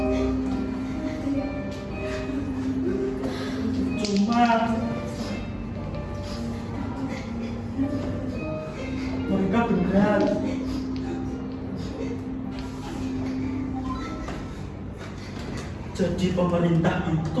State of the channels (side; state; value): both; identical; correlation 1.00